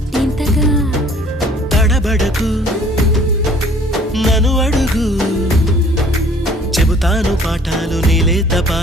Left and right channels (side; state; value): both; normal; correlation 0.55